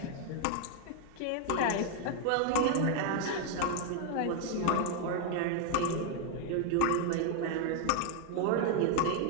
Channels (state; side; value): different; both; correlation 0.00